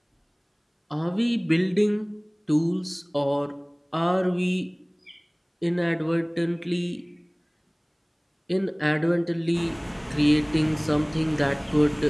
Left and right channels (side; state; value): both; identical; correlation 1.00